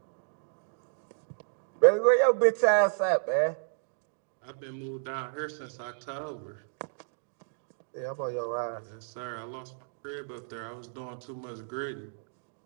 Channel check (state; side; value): silent; left; digital silence